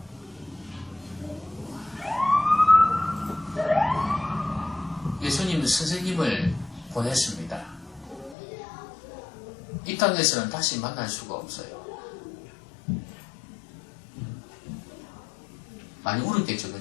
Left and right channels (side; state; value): right; drops out; at 8.3 s